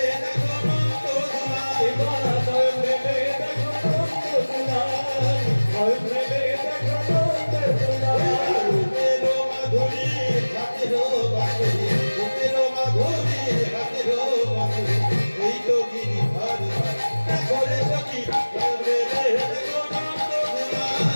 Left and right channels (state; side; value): inverted; both; correlation -1.00